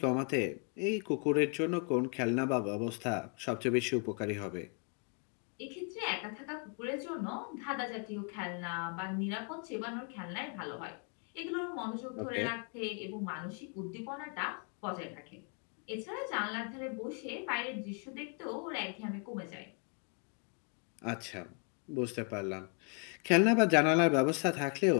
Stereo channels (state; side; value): quieter; right; 38.5 dB